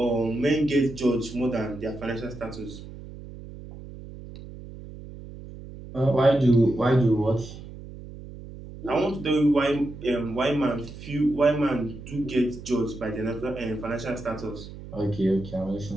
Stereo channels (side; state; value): right; noise; hum, 14 dB below the sound